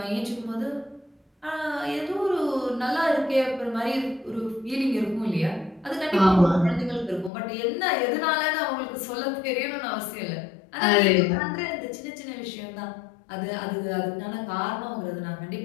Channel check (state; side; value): drops out; right; at 7.3 s